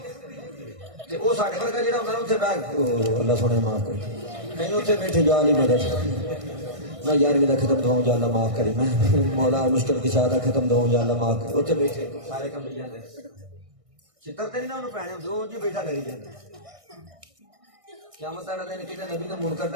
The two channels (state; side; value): late; left; 1.6 ms